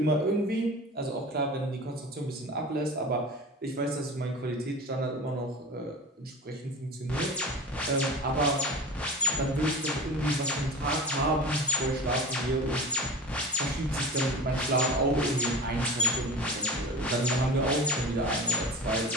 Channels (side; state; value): both; normal; correlation 0.34